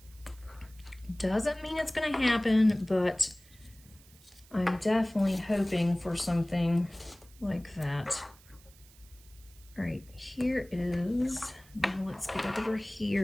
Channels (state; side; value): noise; right; hiss, 25 dB below the sound